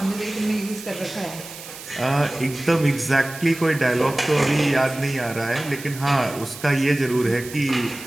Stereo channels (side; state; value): right; noise; hiss, 14 dB below the sound